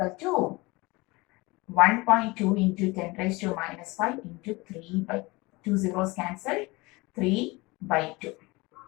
to 1.2 into 10 raised to minus 5 into 3 by 2 zeros cancelled, 3 by 2.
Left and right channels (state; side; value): quieter; right; 23.7 dB